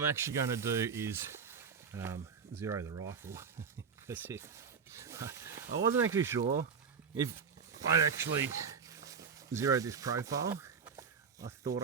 actually going to do is zero the rifle. That's it. I wasn't actually sure if I'd actually zeroed this profile. I thought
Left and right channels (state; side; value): quieter; left; 6.1 dB